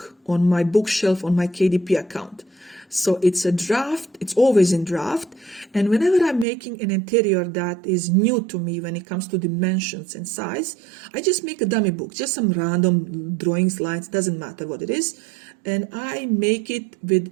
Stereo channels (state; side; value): drops out; left; at 6.5 s